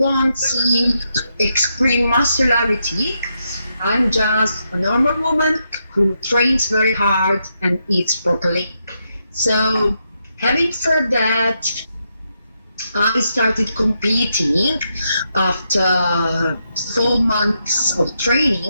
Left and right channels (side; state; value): both; inverted; correlation -0.82